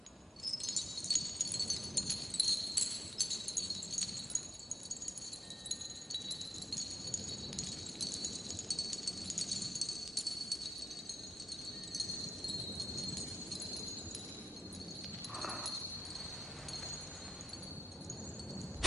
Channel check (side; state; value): both; normal; correlation 0.90